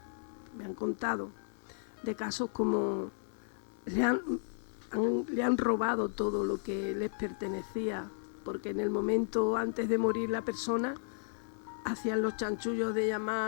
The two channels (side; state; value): right; silent; digital silence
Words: me han contado, de casos como le han robado todo lo que les pertenecía, porque en el momento antes de morir la persona hacían los chanchullos de